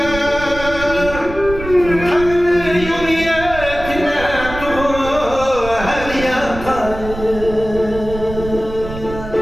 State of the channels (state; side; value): noise; right; rumble, 10 dB below the sound